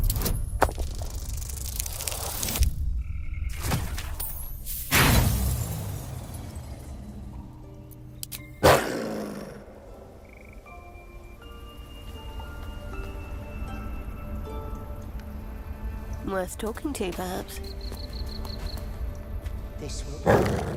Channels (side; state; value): both; identical; correlation 1.00